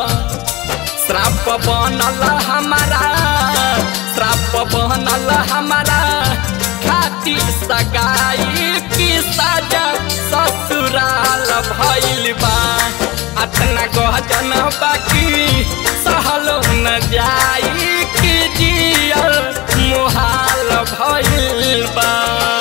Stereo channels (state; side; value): quieter; right; 20.7 dB